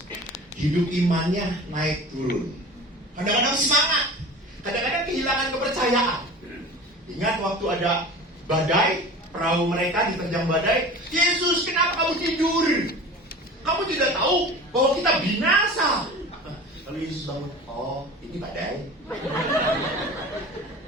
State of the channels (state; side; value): normal; both; correlation 0.37